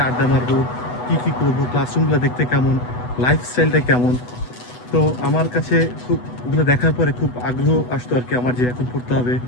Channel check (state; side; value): late; right; 8.1 ms